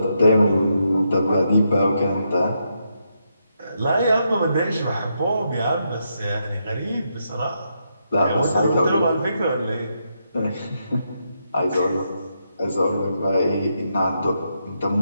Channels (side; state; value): both; inverted; correlation -0.81